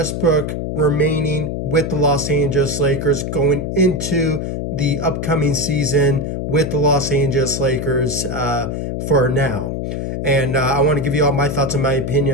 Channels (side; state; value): left; noise; hum, 3 dB below the sound